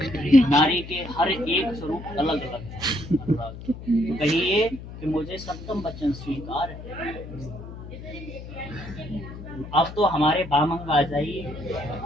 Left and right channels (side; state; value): left; noise; hum, 12 dB below the sound